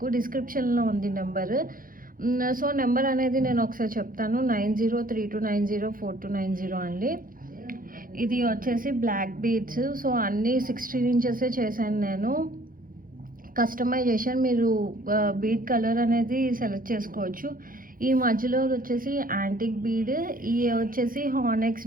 డిస్క్రిప్షన్లో ఉంది నెంబర్. సో నెంబర్ అనేది నేను ఒకసారి చెప్తాను, 9032904290 అండి. ఇది వచ్చేసి బ్లాక్ బీడ్స్. సో అన్నీ 16 ఇంచెసే చేశాను నేను. కస్టమైజేషన్ మీరు బీడ్ కలర్ అనేది సెలెక్ట్ చేసుకోవచ్చు. ఈ మధ్యలో వచ్చేసి యాంటిక్ బీడ్, ఇవి వచ్చేసి హానెక్స్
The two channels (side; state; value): left; late; 0.41 ms